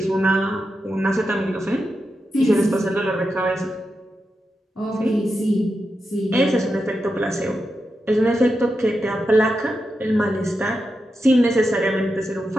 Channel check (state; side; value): normal; both; correlation 0.88